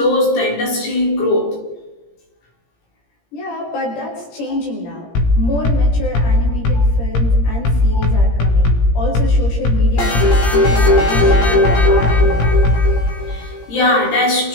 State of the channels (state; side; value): late; right; 17 ms